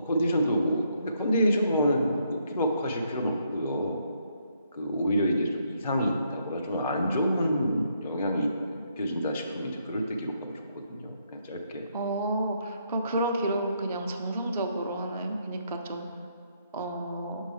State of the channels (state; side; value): inverted; both; correlation -0.73